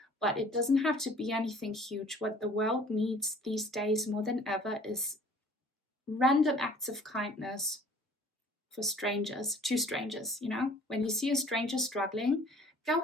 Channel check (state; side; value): normal; both; correlation 0.52